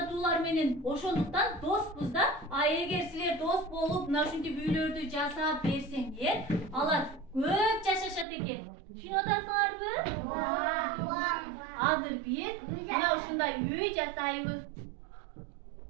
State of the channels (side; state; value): left; drops out; at 8.2 s